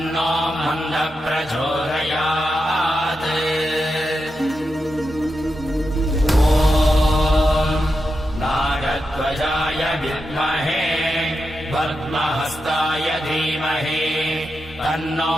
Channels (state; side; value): normal; both; correlation 0.88